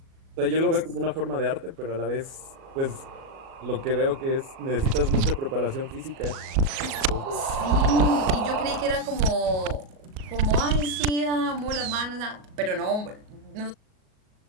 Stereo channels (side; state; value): left; late; 38 ms